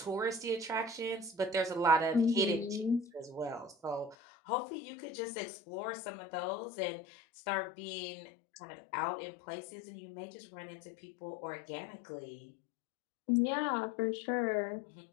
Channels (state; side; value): drops out; right; at 4.2 s